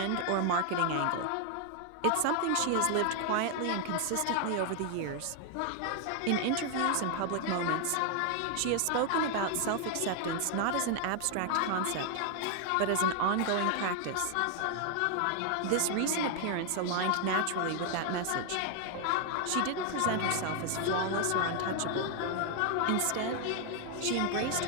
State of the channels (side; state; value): both; different; correlation 0.00